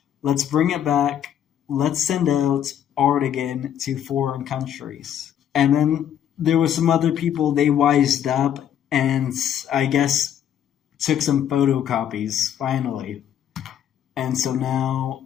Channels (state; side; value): quieter; right; 9.8 dB